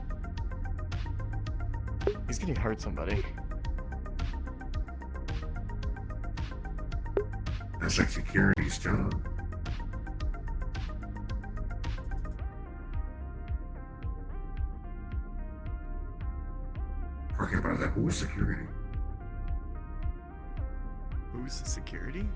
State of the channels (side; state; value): both; identical; correlation 1.00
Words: He's gonna hurt somebody. That's like security's job. Talking about that, who's security? Who's the security?